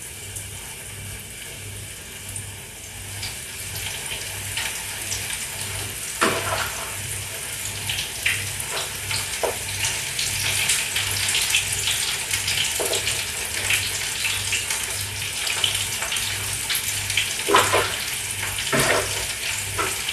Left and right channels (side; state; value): both; identical; correlation 1.00